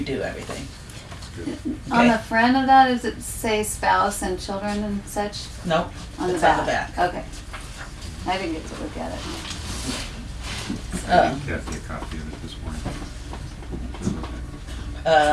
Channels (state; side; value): identical; both; correlation 1.00